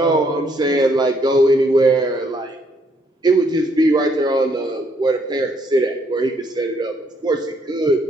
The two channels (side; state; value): both; normal; correlation 0.70